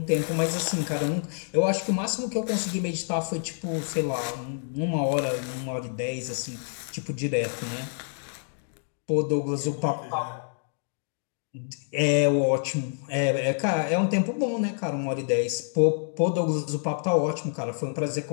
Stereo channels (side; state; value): right; silent; digital silence